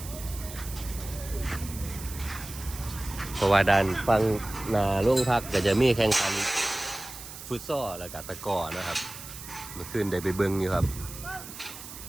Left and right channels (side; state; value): right; noise; hiss, 13 dB below the sound